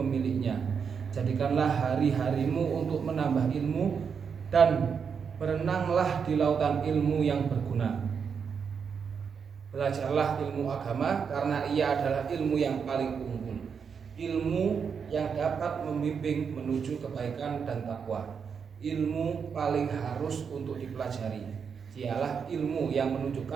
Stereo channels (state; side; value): quieter; left; 6.4 dB